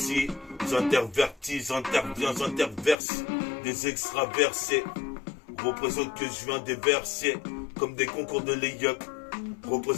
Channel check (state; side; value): drops out; right; at 3.0 s